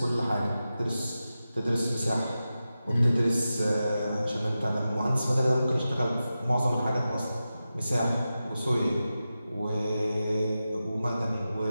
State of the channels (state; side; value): inverted; both; correlation -0.92